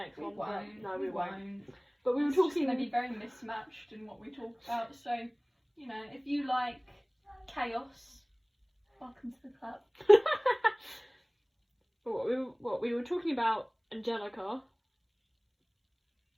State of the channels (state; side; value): identical; both; correlation 1.00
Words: one. Won't. No, we won't. But But we were it's talking. going to be very mismatched in what we talk about. So, you know, if you like chaos, welcome to the club. What we were talking about Angelica,